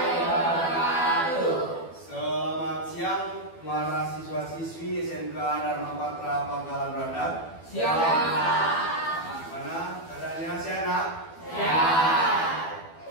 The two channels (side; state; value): right; late; 12 ms